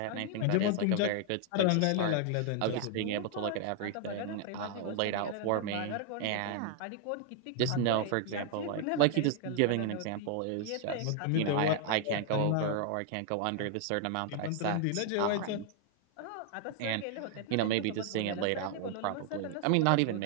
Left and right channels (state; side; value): different; both; correlation 0.00